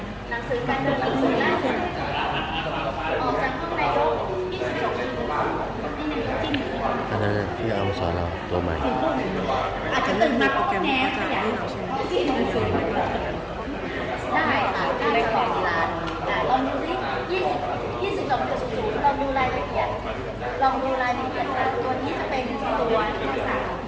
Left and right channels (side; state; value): both; identical; correlation 1.00